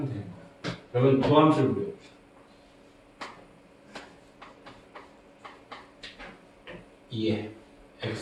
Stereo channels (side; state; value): both; identical; correlation 1.00